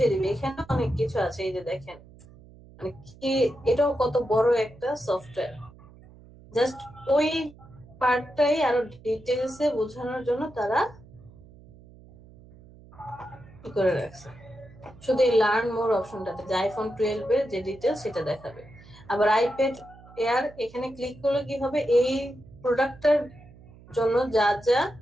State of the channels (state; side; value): noise; right; hum, 22 dB below the sound